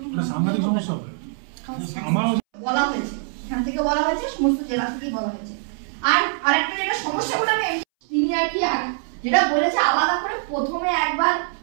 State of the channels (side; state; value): left; silent; 63 dB below the other